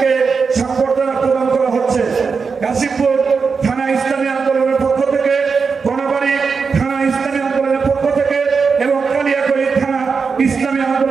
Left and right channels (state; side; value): quieter; left; 5.2 dB